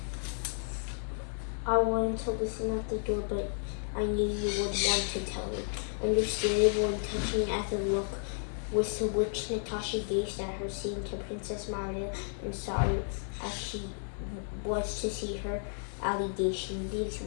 I wanted to listen at the door, but I knew you would want to tell me. Understandable and touching as a look with which Natasha gazed at her seemed to Princess Maria and sorry as she was to see her allegation. These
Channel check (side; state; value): right; silent; digital silence